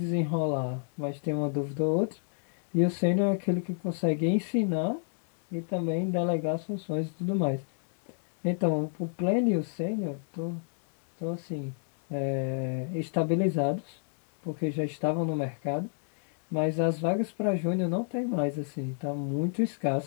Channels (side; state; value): right; silent; 58 dB below the other